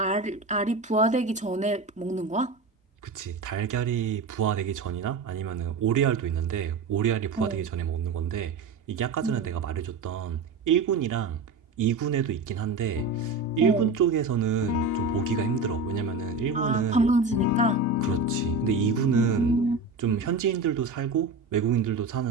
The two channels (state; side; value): quieter; left; 3.9 dB